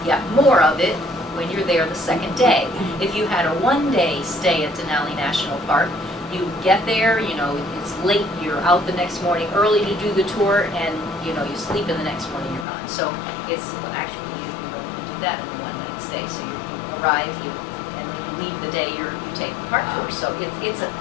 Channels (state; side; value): drops out; right; at 12.7 s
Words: yet more of it when you're there the second day. If you had a 1-day stay at Denali National Park, you get there, it's late, you're out the next morning early to do the tour, and you sleep in the next morning, you're gone. So it's actually, you don't even do that in a 1-night stay. So you arrive, and then you leave the day you take the park tour. So it's a